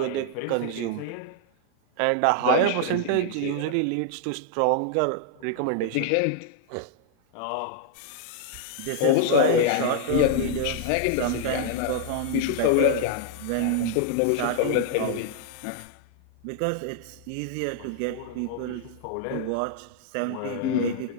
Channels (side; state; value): both; different; correlation -0.01